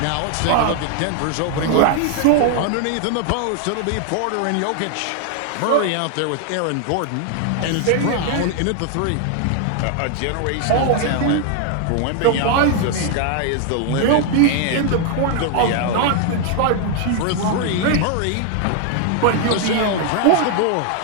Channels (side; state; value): both; different; correlation 0.00